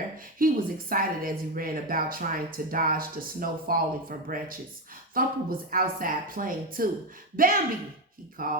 He was excited as he ran about trying to dodge the snow falling from branches. Thumper was outside playing too. Bambi, he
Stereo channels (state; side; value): normal; both; correlation 0.12